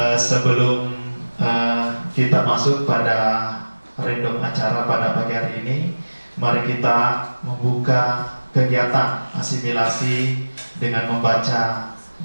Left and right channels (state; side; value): inverted; both; correlation -1.00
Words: sebelum kita masuk pada random acara pada pagi hari ini, mari kita membuka kegiatan asimilasi dengan membaca